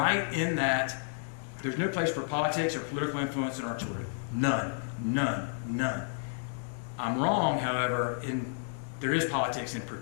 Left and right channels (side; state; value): right; silent; digital silence